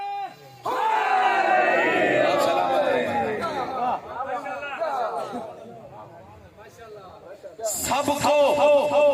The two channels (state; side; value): identical; both; correlation 1.00